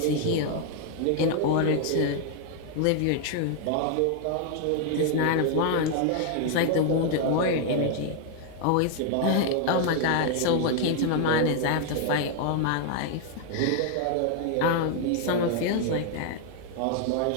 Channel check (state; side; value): different; both; correlation 0.00